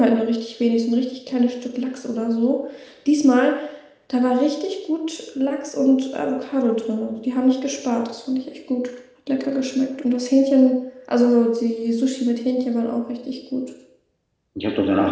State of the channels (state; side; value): identical; both; correlation 1.00